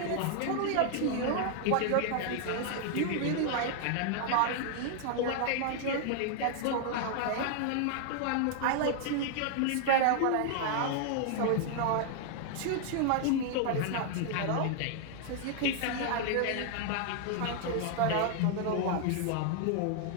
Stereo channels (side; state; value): both; different; correlation 0.00